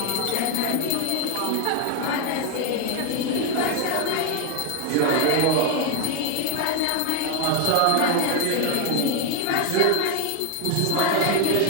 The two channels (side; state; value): both; different; correlation 0.01